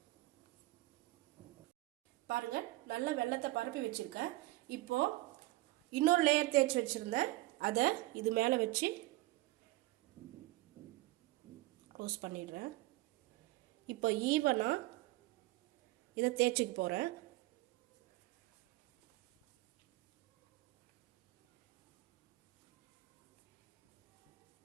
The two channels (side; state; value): left; quieter; 18.8 dB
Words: பாருங்க, நல்ல வெல்லத்தை பரப்பி வச்சிருக்கேன். இப்போ இன்னொரு லேயர் தேய்ச்சி வச்சிருந்தேன், அதை இது மேலே வச்சு க்ளோஸ் பண்ணிடுறேன். இப்போ ஈவனாக இதை தேய்ச்சிக்க போகிறேன்.